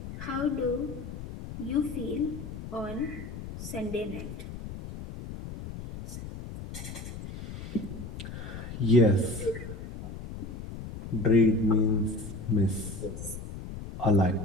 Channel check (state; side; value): noise; left; rumble, 10 dB below the sound